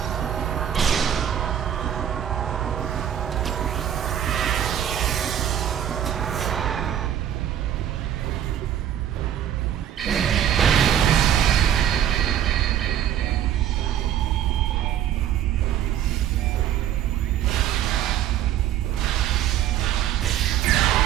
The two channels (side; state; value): left; quieter; 10.4 dB